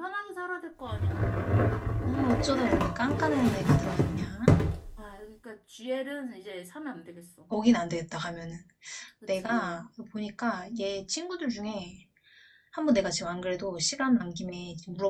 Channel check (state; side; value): identical; both; correlation 1.00